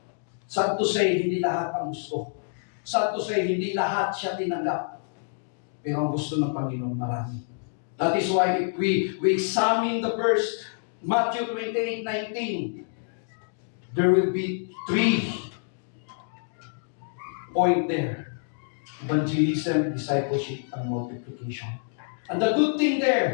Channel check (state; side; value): silent; right; digital silence